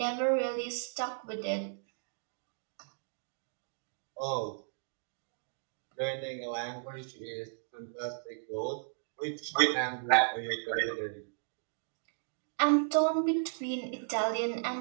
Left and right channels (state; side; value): silent; left; digital silence